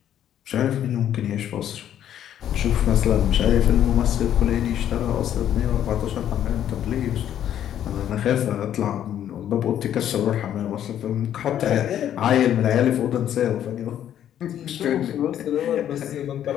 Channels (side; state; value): right; quieter; 10.6 dB